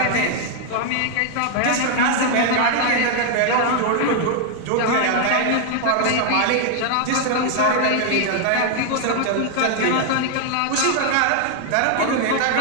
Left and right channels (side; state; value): both; different; correlation 0.00